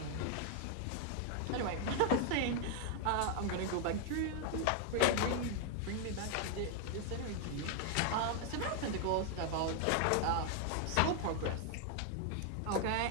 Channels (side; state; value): both; different; correlation 0.00